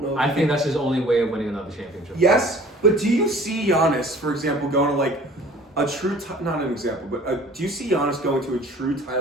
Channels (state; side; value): normal; both; correlation 0.49